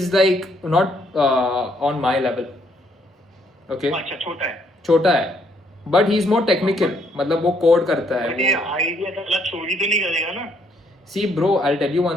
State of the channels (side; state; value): both; normal; correlation 0.69